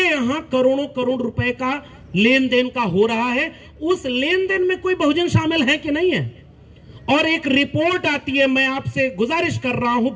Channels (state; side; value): identical; both; correlation 1.00